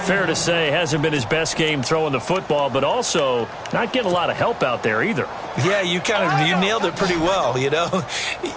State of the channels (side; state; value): both; identical; correlation 1.00